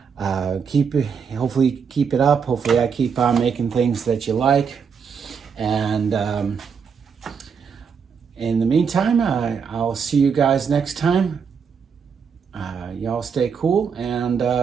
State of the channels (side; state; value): left; quieter; 6.4 dB